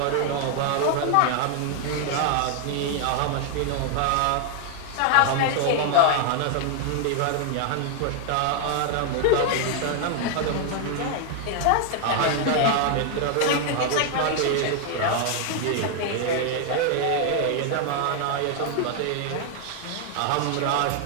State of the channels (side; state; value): both; different; correlation 0.00